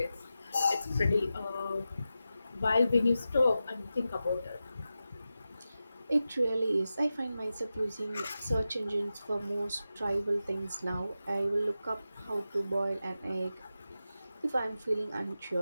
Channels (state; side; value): inverted; both; correlation -0.92